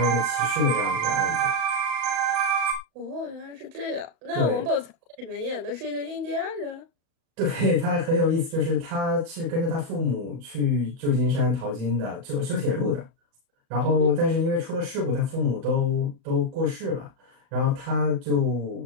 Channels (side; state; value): left; late; 37 ms